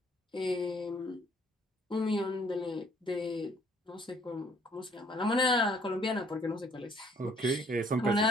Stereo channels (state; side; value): normal; both; correlation 0.62